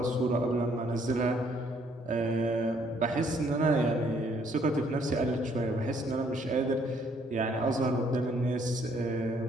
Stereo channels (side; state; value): both; normal; correlation 0.66